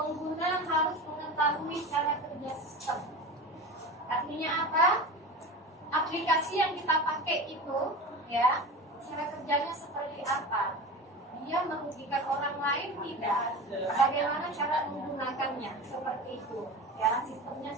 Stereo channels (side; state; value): both; normal; correlation 0.30